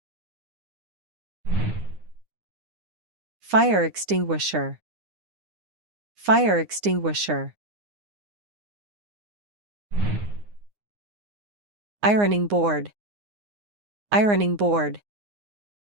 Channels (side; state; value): left; late; 9.7 ms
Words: Fire extinguisher. Fire extinguisher. Ironing board. Ironing board.